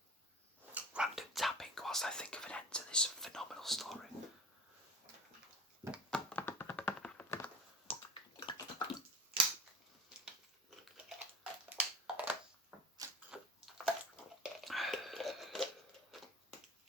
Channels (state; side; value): normal; both; correlation 0.34